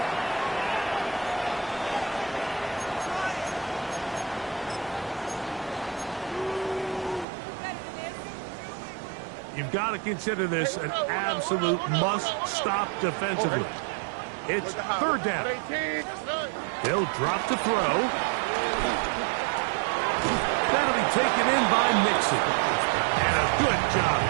You've got to consider this an absolute must-stop defensively. It's 3rd down. They'll drop to throw. That'll be taken in by Mixon. And a good job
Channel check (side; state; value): left; drops out; at 7.2 s